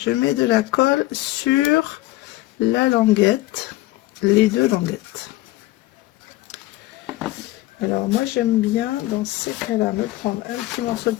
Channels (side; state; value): right; quieter; 17.6 dB